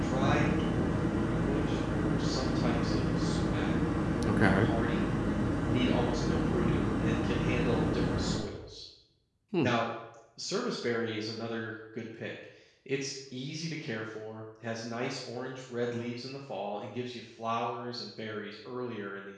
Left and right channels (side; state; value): both; identical; correlation 1.00